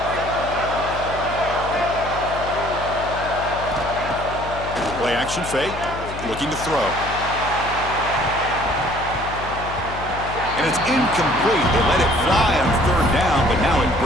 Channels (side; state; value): left; noise; hum, 10 dB below the sound